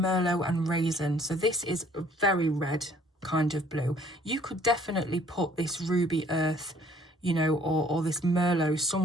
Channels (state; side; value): normal; both; correlation 0.58